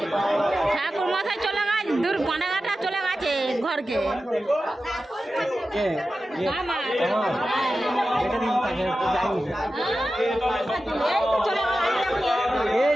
ঠাকুর মাথায় চলে গেছে, দূর পানাঘাটা চলে গেছে ঘরকে।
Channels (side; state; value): both; normal; correlation 0.93